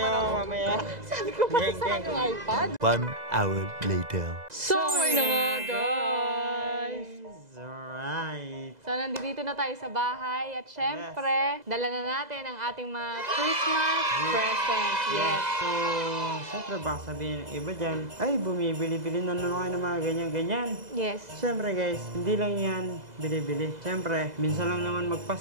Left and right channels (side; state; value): left; late; 2.0 ms